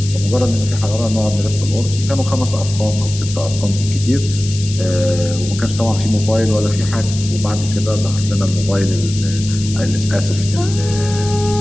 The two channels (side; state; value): left; noise; hiss, 11 dB below the sound